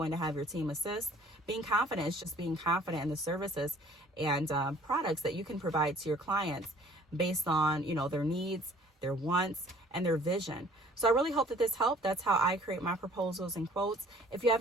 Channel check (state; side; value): normal; both; correlation 0.54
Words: to have your team assist. Being confident is just being confident in the services and products that you can provide to your clients based on, you know, their needs, their wants, and their vision. So I really hope that this helped. That's how I create my proposals and quotes. If you